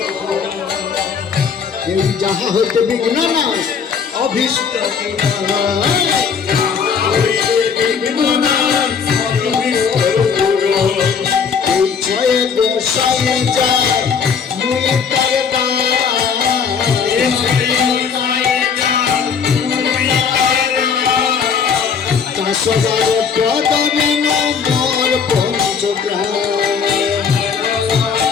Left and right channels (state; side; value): quieter; right; 6.4 dB